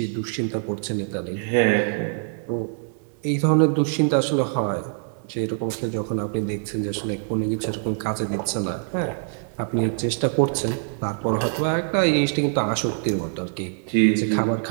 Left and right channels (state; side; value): silent; left; 62 dB below the other